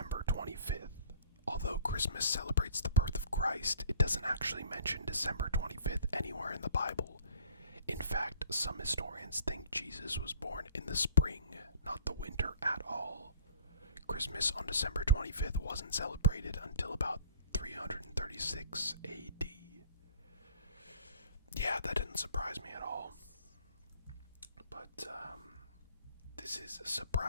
25th. Although Christmas celebrates the birth of Christ, it doesn't actually mention December 25th anywhere in the Bible. In fact, some historians think Jesus was born in the spring, not the winter at all. Christmas on December 25th wasn't celebrated until about 336 AD. Yeah, that didn't surprise me at all. But, this is a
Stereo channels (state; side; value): inverted; both; correlation -0.51